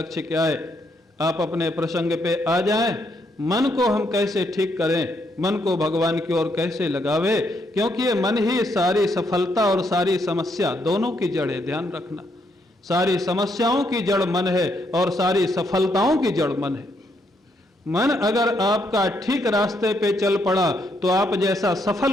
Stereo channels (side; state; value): both; normal; correlation 0.75